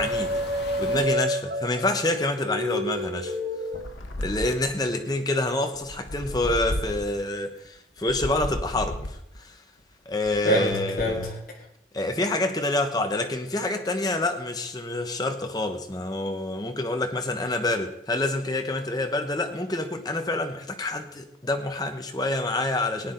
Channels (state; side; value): normal; both; correlation 0.44